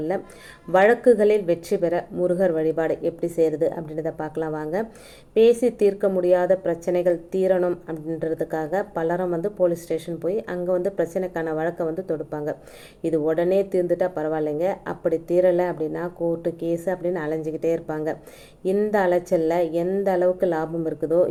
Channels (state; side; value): identical; both; correlation 1.00